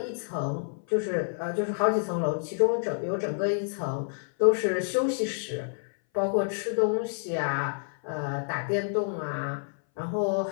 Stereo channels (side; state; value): right; silent; 58 dB below the other